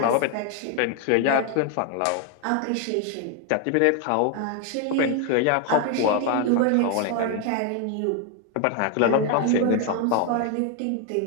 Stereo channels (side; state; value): both; different; correlation 0.01